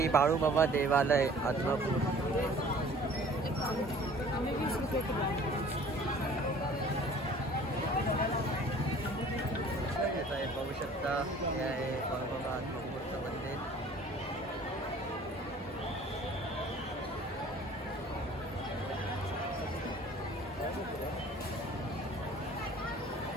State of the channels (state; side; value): normal; both; correlation 0.50